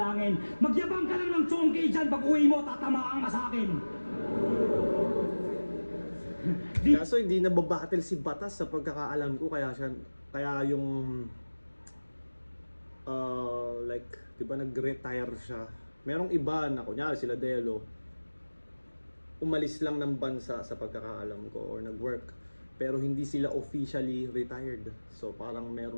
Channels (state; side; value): inverted; both; correlation -1.00